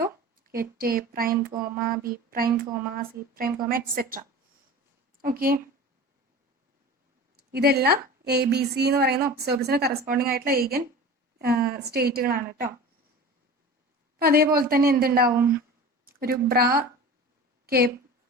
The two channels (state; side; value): normal; both; correlation 0.36